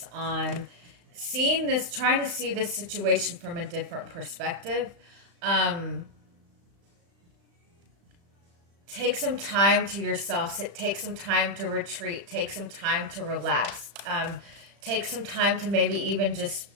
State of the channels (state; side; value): late; left; 35 ms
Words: on seeing this, trying to see this situation from a different perspective. Take some time to yourself. Take some time to retreat. Take some time to relax. Take some time to maybe even just